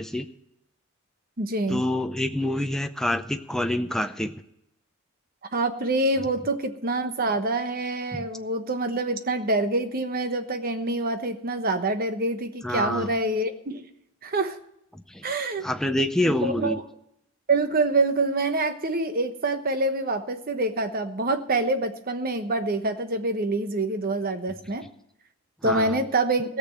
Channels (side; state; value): both; normal; correlation 0.02